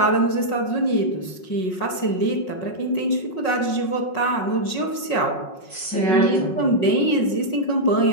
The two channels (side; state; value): right; late; 5.4 ms